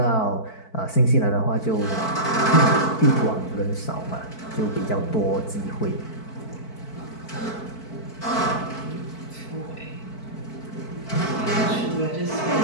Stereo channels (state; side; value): late; right; 4.5 ms